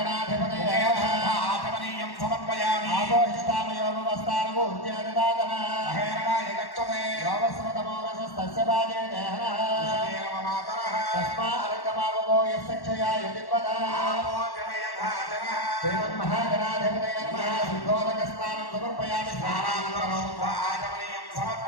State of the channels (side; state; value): right; late; 1.1 ms